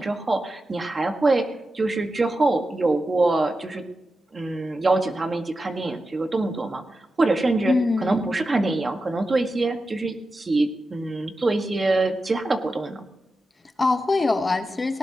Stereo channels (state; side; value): normal; both; correlation 0.91